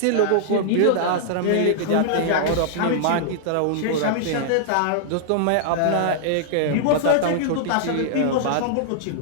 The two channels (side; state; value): both; different; correlation -0.01